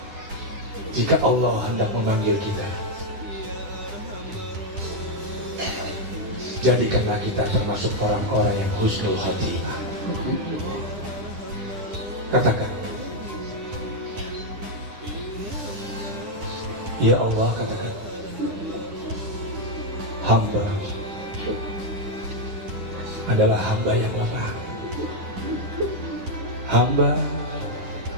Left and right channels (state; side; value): late; left; 10 ms